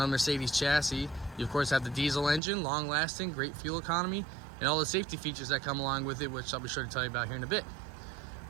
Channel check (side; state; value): left; drops out; at 2.4 s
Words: a Mercedes chassis, you of course have the diesel engine, long lasting, great fuel economy, and all the safety features that come along with it, which I'll be sure to tell you about here in a bit.